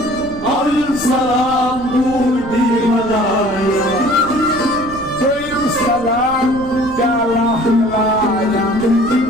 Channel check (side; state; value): right; noise; rumble, 16 dB below the sound